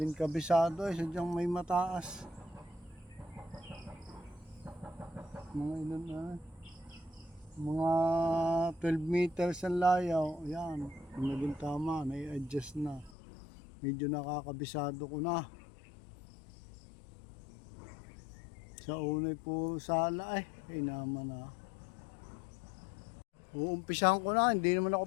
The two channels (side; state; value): right; drops out; at 13.1 s